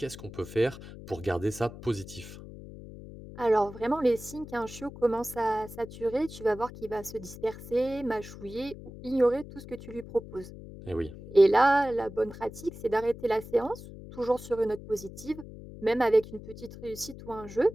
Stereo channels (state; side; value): noise; left; hum, 14 dB below the sound